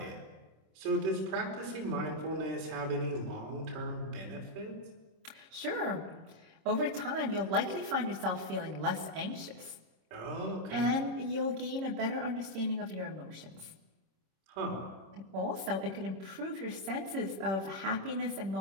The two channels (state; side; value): late; left; 26 ms